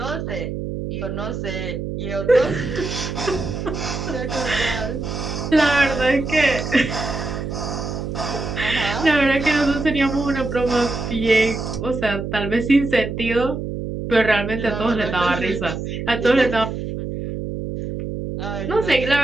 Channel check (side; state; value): right; noise; hum, 5 dB below the sound